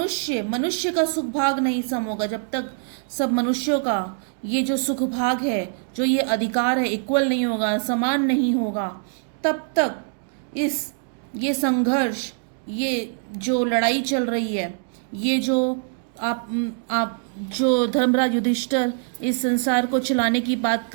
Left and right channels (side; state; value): left; silent; 60 dB below the other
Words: का सुख भाग नहीं सम होगा, जब तक सब मनुष्यों का ये जो सुख भाग है, जो ये अधिकार है, इक्वल नहीं होगा, समान नहीं होगा, तब तक ये संघर्ष, ये जो लड़ाई चल रही है, ये जो आप जो धर्मराज युधिष्ठिर इस संसार को चलाने की बात